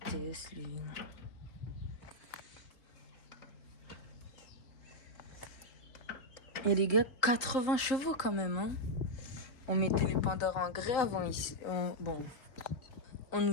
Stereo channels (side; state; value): right; late; 3.7 ms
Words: Et les gars, 80 chevaux quand même. Hein. On mettait les Pandores en grès avant ici. On